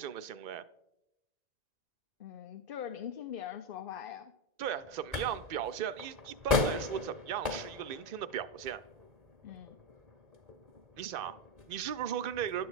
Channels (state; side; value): late; left; 1.9 ms